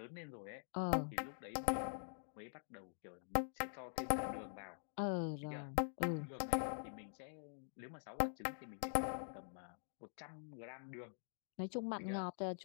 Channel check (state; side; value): silent; right; digital silence